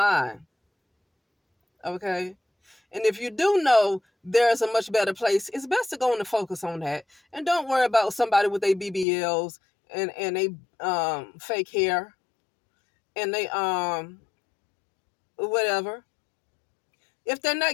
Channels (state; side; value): drops out; right; at 9.1 s